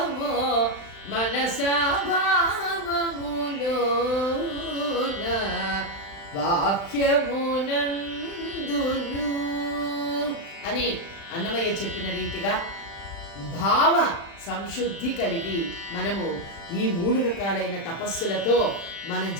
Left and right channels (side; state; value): right; late; 35 ms